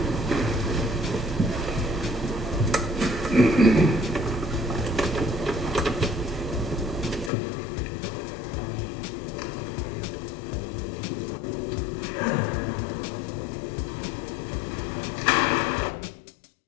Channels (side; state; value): right; drops out; at 7.3 s